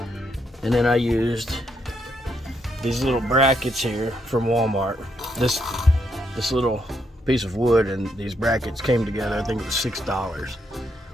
then I used these little brackets here from Walmart. This little piece of wood and these brackets came together, I think it was $6.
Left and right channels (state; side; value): normal; both; correlation 0.77